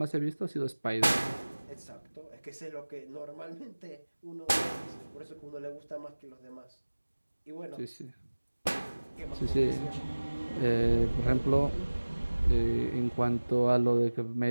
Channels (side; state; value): both; inverted; correlation -1.00